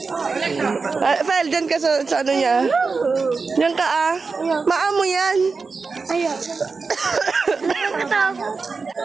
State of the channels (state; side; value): quieter; left; 4.5 dB